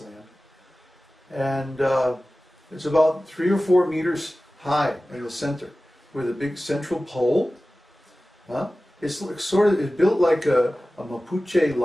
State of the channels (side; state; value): both; normal; correlation 0.96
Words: land. And it's about 3 or 4 meters high in the center, with a big central pole. It's built like a Mapuche